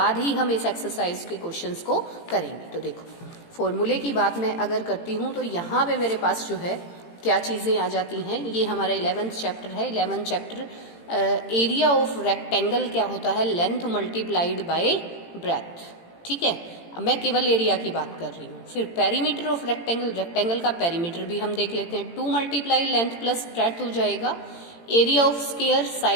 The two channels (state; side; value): late; right; 18 ms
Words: ही हम इस एक्सरसाइज के क्वेश्चंस को करेंगे। तो देखो फॉर्मूले की बात मैं अगर करती हूँ तो यहाँ पे मेरे पास जो है क्या चीज़ें आ जाती हैं। ये हमारा 11th चैप्टर है। 11th chapter area of rectangle क्या होता है, लेंथ मल्टीप्लाइड बाय ब्रेथ। ठीक है, अब मैं केवल एरिया की बात कर रही हूँ। फिर पेरीमीटर ऑफ रेक्टेंगल, रेक्टेंगल का पेरीमीटर भी हम देख लेते हैं। 2 मल्टीप्लाई लेंथ प्लस ब्रेथ हो जाएगा। Area of square